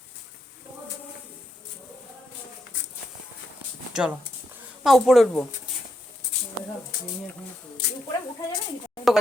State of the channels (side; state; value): both; normal; correlation 0.80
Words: চলো না উপরে উঠবো। উপরে উঠা যাবে নাকি?